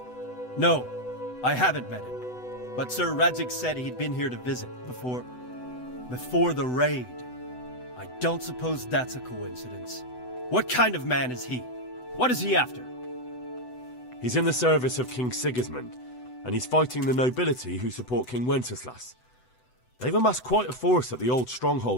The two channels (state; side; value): late; right; 8.0 ms